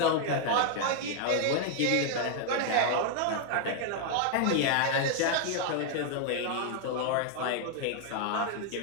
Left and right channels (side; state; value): both; different; correlation 0.00